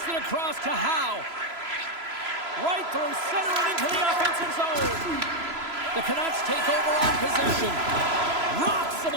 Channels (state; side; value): late; left; 3.0 ms